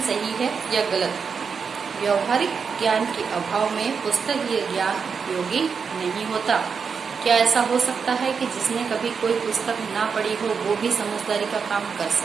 सही है या गलत? व्यावहारिक ज्ञान के अभाव में पुस्तकीय ज्ञान उपयोगी नहीं होता। क्या ऐसा हो सकता है कि जिसने कभी कोई पुस्तक ना पढ़ी हो वो भी समझदारी का काम कर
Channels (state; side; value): quieter; left; 5.9 dB